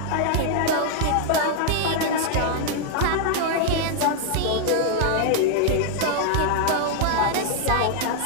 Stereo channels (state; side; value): different; both; correlation 0.00